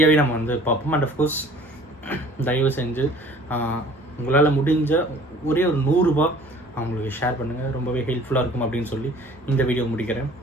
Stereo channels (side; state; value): both; normal; correlation 0.51